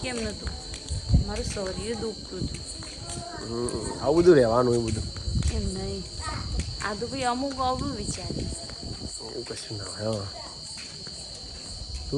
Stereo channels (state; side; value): identical; both; correlation 1.00